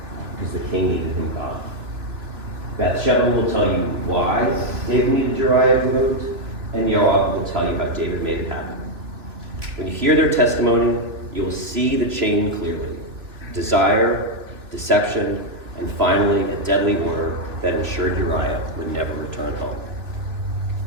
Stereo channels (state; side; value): late; left; 2.8 ms